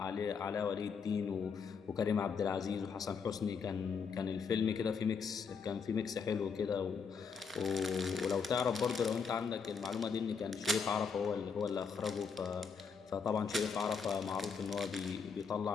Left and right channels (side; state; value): right; quieter; 5.8 dB